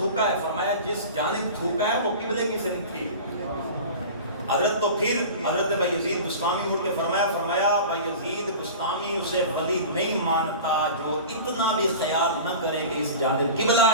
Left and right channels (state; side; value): inverted; both; correlation -0.35